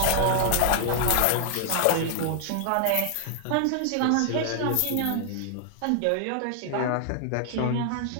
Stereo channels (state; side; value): different; both; correlation 0.00